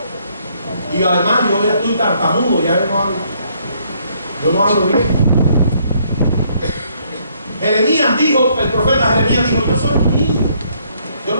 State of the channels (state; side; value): inverted; both; correlation -0.68